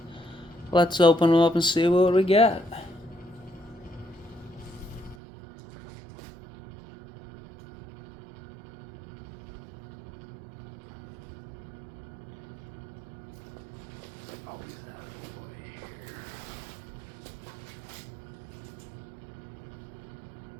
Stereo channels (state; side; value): drops out; left; at 5.2 s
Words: Let's open them up and see what we got.